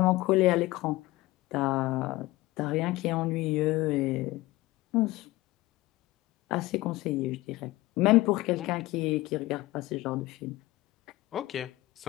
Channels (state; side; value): quieter; right; 18.9 dB